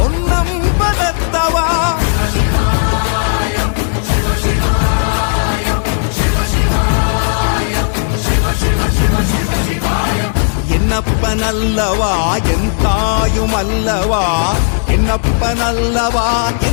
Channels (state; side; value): silent; right; digital silence